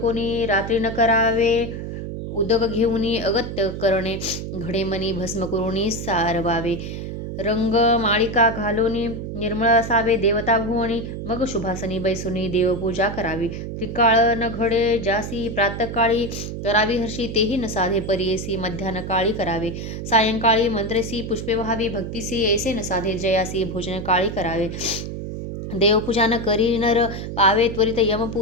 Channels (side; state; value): right; noise; hum, 7 dB below the sound